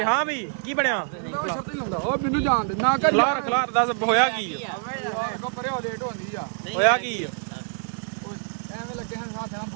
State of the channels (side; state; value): left; silent; 61 dB below the other